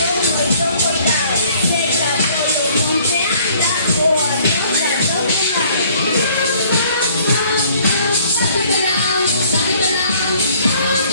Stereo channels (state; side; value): inverted; both; correlation -0.58